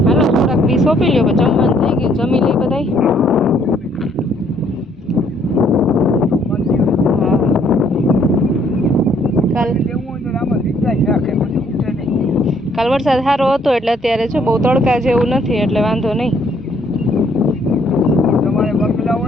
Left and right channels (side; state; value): both; normal; correlation 0.65